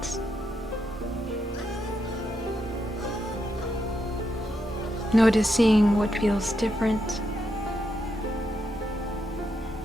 Noticing what feels different.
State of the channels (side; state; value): both; normal; correlation 0.81